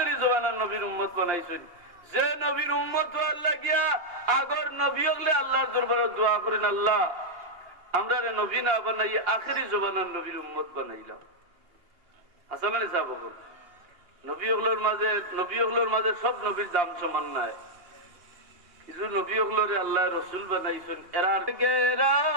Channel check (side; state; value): left; late; 2.8 ms